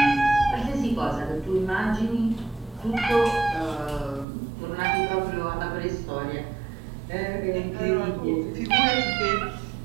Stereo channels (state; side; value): drops out; left; at 4.2 s